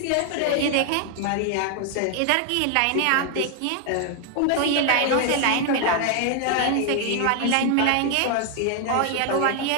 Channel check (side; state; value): both; different; correlation 0.00